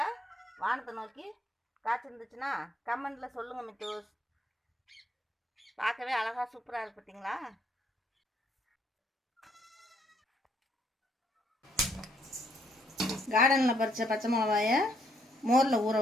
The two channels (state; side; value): normal; both; correlation 0.71